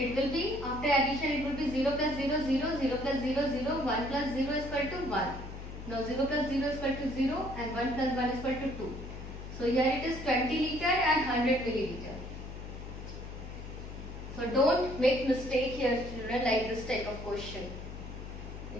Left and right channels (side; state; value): left; noise; hum, 10 dB below the sound